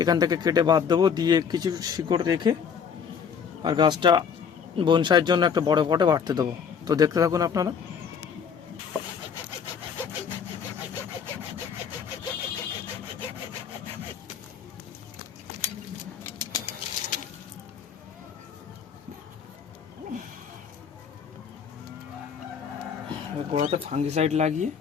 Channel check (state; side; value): quieter; right; 7.0 dB